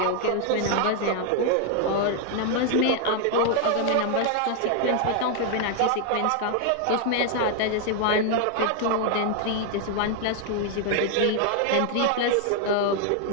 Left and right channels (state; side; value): different; both; correlation 0.00